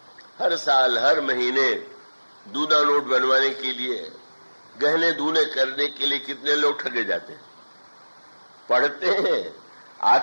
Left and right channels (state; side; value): inverted; both; correlation -1.00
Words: हर साल हर महीने दूना नोट बनवाने के लिए, गहने दूने करने के लिए कितने लोग ठगे जाते हैं। पढ़ते हैं,